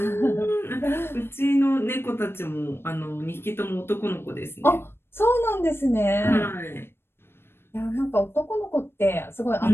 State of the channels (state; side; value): late; right; 0.11 ms